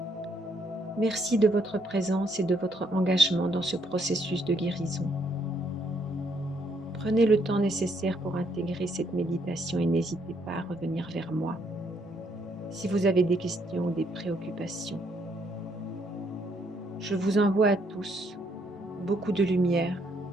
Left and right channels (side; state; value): both; normal; correlation 0.71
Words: Merci de votre présence et de votre engagement dans ce processus de guérison. Prenez le temps nécessaire pour intégrer cette méditation et n'hésitez pas à revenir vers moi si vous avez des questions ou des préoccupations. Je vous envoie à tous beaucoup de lumière